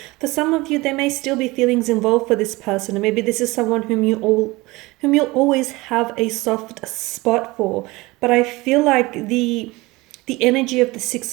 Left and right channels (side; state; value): left; quieter; 21.8 dB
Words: for some of you, there may still be feelings involved for this person, and maybe this is someone whom you'll always have a soft spot for. But I feel like the energy of the Six